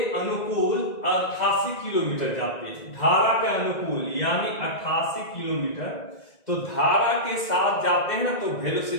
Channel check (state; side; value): late; right; 1.9 ms